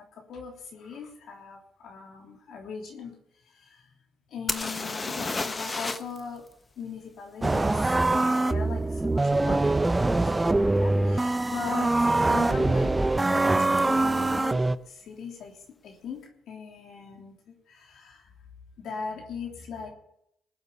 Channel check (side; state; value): both; normal; correlation 0.96